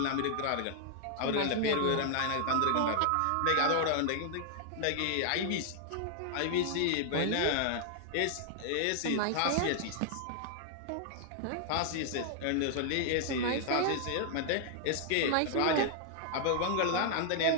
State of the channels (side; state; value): both; different; correlation 0.00